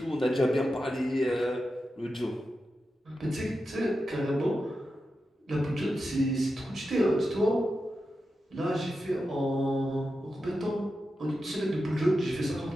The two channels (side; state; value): both; normal; correlation 0.90